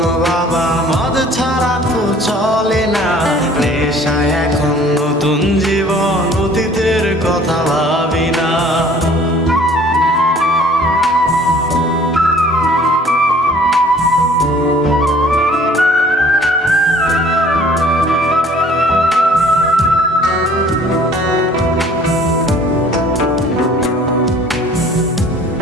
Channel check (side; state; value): both; normal; correlation 0.53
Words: বাবা, মদ ছাড়া তো চলে না, নেশায় এখন নতুন জীবন, অতীতের কথা ভাবি না।